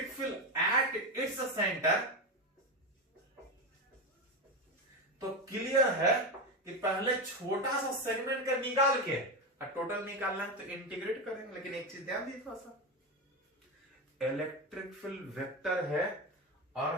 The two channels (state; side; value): normal; both; correlation 0.15